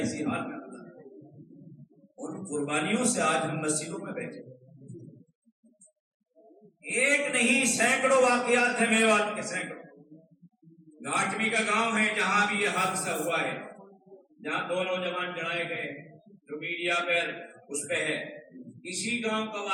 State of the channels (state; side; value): identical; both; correlation 1.00